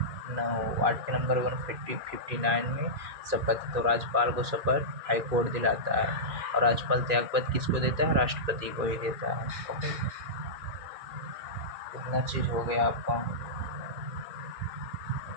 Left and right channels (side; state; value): left; late; 2.4 ms